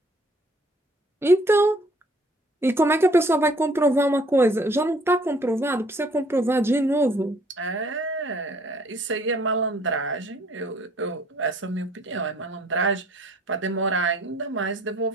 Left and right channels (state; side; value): normal; both; correlation 0.59